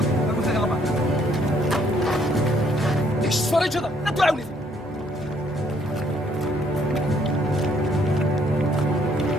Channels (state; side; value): normal; both; correlation 0.67